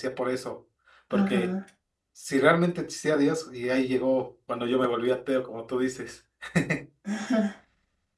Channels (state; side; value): identical; both; correlation 1.00